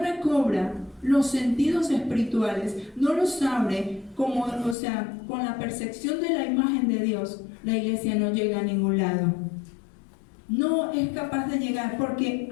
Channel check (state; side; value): drops out; right; at 4.8 s